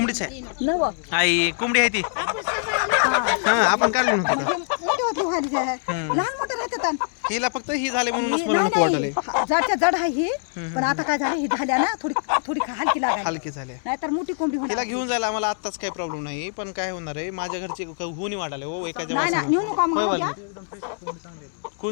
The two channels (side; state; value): right; silent; digital silence